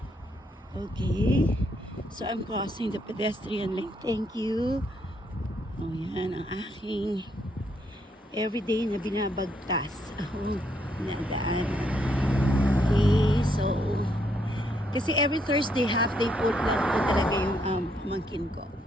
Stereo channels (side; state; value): both; normal; correlation 0.74